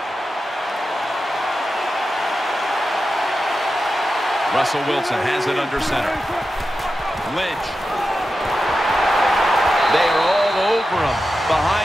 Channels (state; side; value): normal; both; correlation 0.91